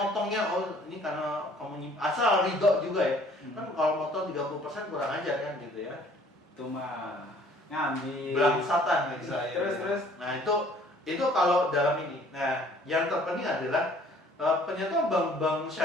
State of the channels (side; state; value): both; normal; correlation 0.56